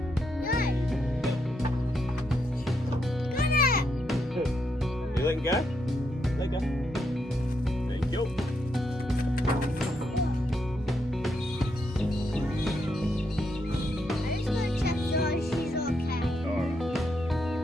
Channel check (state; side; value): normal; both; correlation 0.79